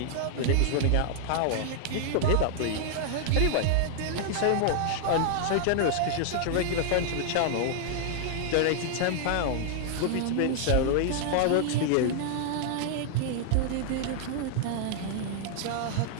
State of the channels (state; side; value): different; both; correlation -0.01